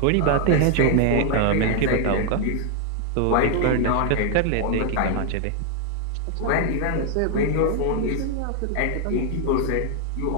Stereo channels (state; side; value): different; both; correlation 0.00